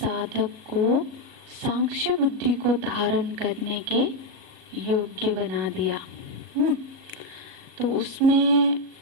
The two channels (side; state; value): left; late; 37 ms